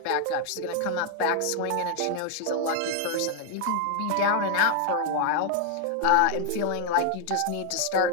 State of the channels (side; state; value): both; different; correlation 0.00